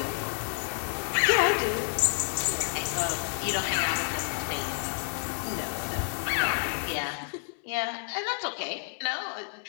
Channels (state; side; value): silent; right; digital silence